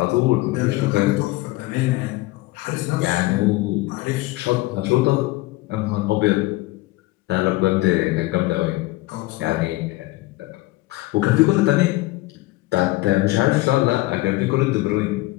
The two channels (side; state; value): right; quieter; 19.9 dB